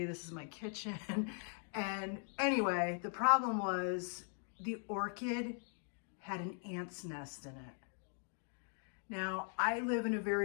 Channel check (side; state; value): right; silent; 51 dB below the other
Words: this is my kitchen. And anyway, the problem was the orchid had an ant's nest in it. Now, I live in a